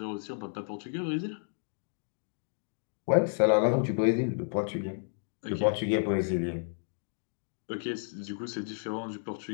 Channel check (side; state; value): right; silent; digital silence